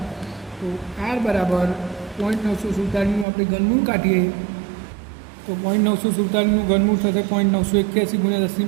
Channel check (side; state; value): left; drops out; at 3.2 s